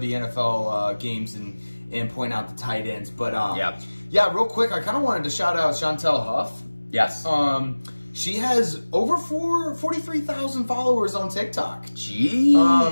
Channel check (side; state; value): both; inverted; correlation -1.00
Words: NFL games and point out the tight ends. But yeah, real quick, I kind of wanted to shout out Chantel Huff. Yes. She has over 43,000 followers on TikTok.